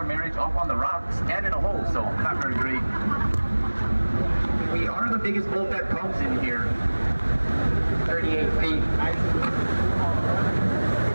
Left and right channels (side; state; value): both; inverted; correlation -1.00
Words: marriage up on the rocks and in a hole, so not very great. We are the biggest boat that comes in here. 38 feet.